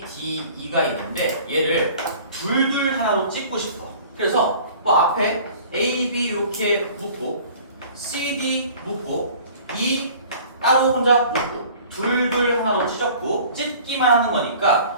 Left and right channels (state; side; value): inverted; both; correlation -0.47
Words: D, E가 있는데 얘를 둘둘 하나로 찍고 싶어. 그래서 뭐 앞에 A, B 이렇게 묶고 C, D 묶고 E 따로 혼자 묶고 둘둘 하나로 찢었고 찢기만 하는